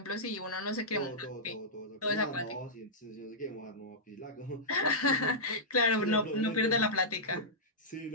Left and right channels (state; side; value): normal; both; correlation -0.13